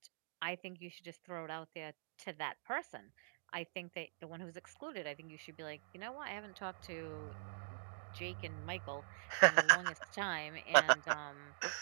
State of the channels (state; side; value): silent; left; digital silence